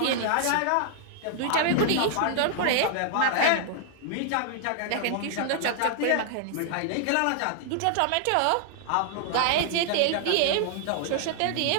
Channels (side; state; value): both; different; correlation -0.01